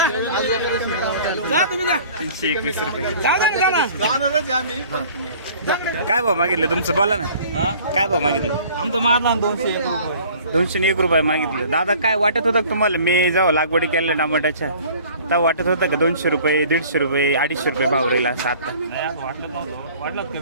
काय भाव मागितलं तुमचं बोला ना? काय भाव मागितलं? आमचं मारला 201 रुपये मागितलं. दादा काय वाटत होतं तुम्हाला मी जेव्हा लागवडी केल्या टमाट्याच्या तेव्हा वाटत होतं का 200 रुपये 150 रुपये 250 रुपये भाव राहील असं? आता वाटलं कमी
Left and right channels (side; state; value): both; inverted; correlation -0.50